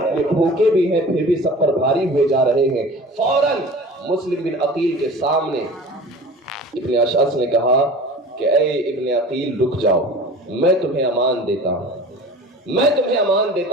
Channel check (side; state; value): both; normal; correlation 0.39